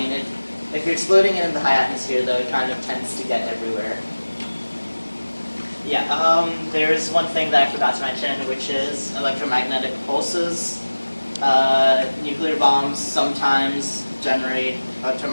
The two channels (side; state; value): both; inverted; correlation -1.00